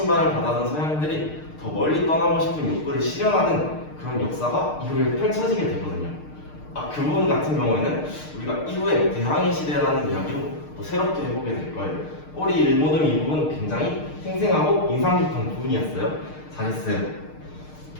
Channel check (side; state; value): right; late; 6.6 ms